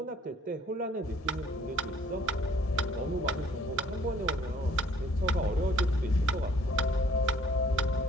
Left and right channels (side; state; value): both; normal; correlation 0.59